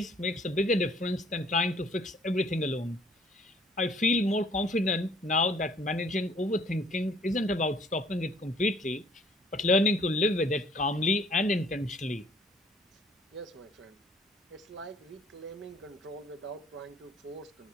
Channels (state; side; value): normal; both; correlation 0.59